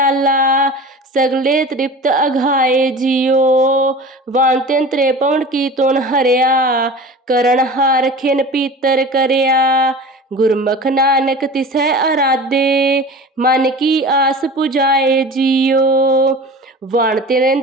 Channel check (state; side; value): normal; both; correlation 0.36